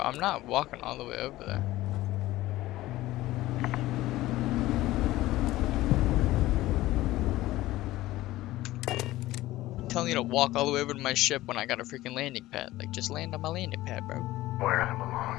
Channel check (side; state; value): right; quieter; 16.7 dB